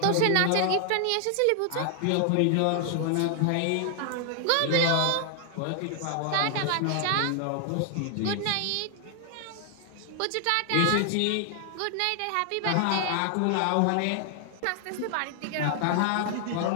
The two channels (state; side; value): different; both; correlation 0.00